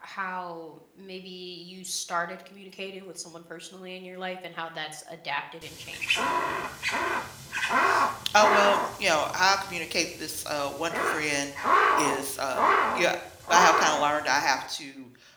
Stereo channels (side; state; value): both; identical; correlation 1.00